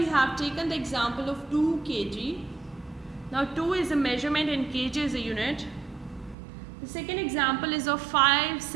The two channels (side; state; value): left; drops out; at 6.4 s